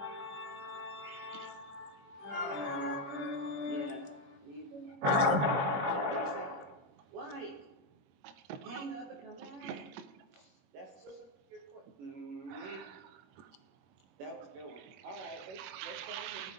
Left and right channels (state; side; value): late; left; 21 ms